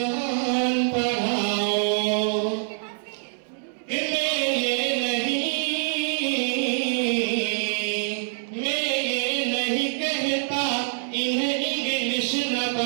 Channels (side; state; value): left; silent; digital silence